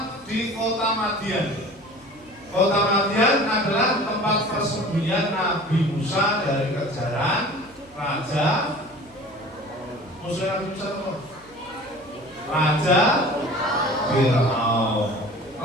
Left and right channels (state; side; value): noise; right; hum, 28 dB below the sound